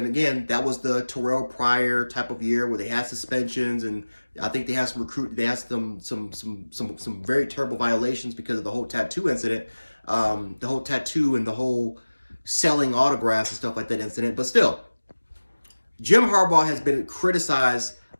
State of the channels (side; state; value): both; inverted; correlation -1.00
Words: again, that was the Terrell Pryor type of year where they had suspensions, and I think they had some very terrible violations because of the whole tattoo incident, the whole tattoo and the whole selling autographs and stuff like that incident. But still, Jim Harbaugh has been criticized